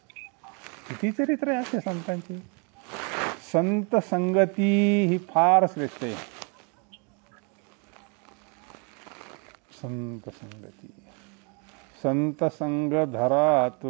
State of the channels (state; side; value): quieter; left; 35.1 dB